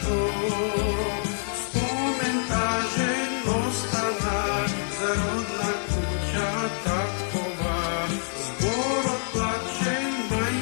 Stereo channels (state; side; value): silent; right; digital silence